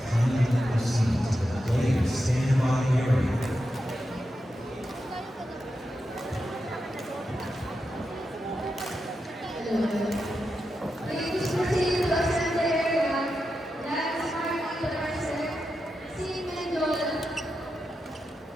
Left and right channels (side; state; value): both; normal; correlation 0.88